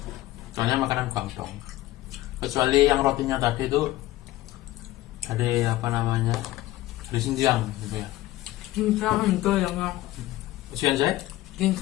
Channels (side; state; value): right; quieter; 16.5 dB